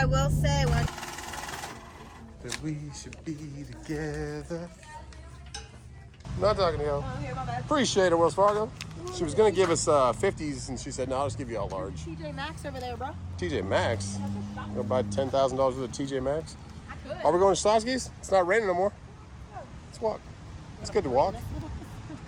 will say when. That we should be together. Not talking to you. Oh, here, my bad. Appreciate it, Wells Fargo. She was gonna give us 50s, and she said, "No, I'll just give you all large." TJ Maxx over there, bro. TJ Maxx. Go buy $10,000 worth of TJ Maxx. I could. Are we going to Schlotzsky's? It's not raining no more. Let's walk. It's good to walk.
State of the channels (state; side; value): identical; both; correlation 1.00